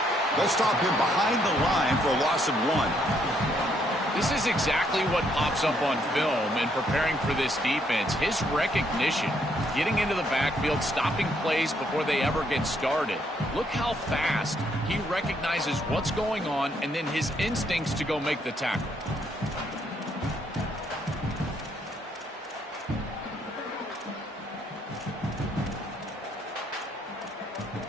They'll stop him behind the line for a loss of 1. This is exactly what pops up on film in preparing for this defense. His recognition, getting into the backfield, stopping plays before they ever get started. Look how fast he recognizes what's going on and then his instincts to go make the tackle.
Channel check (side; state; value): both; normal; correlation 0.71